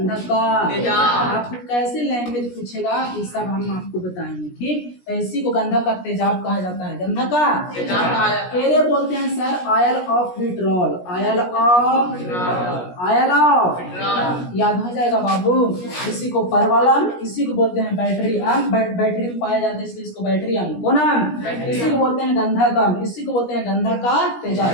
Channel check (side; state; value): right; late; 17 ms